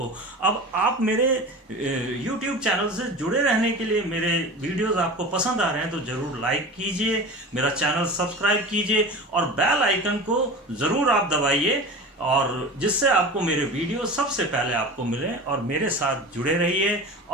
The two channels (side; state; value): both; normal; correlation 0.33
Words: अब आप मेरे YouTube चैनल से जुड़े रहने के लिए, मेरे वीडियोस आपको पसंद आ रहे हैं तो जरूर लाइक कीजिए, मेरा चैनल सब्सक्राइब कीजिए और बेल आइकन को जरूर आप दबाइए, और जिससे आपको मेरे वीडियो सबसे पहले आपको मिले, और मेरे साथ जुड़े रहिए